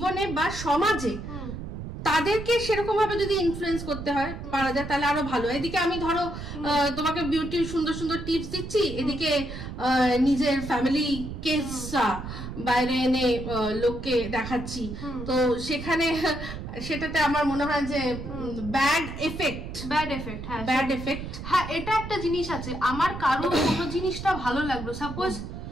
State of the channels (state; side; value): noise; right; rumble, 8 dB below the sound